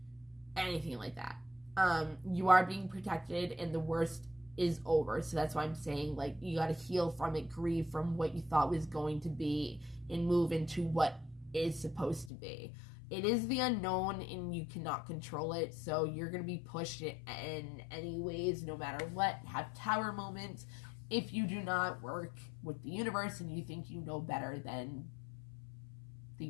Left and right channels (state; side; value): drops out; right; at 12.3 s